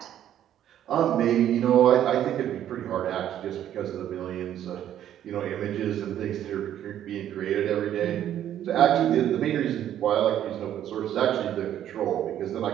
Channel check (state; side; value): quieter; left; 11.0 dB